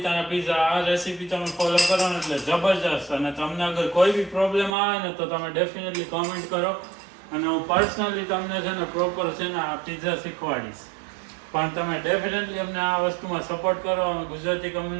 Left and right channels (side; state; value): left; drops out; at 4.8 s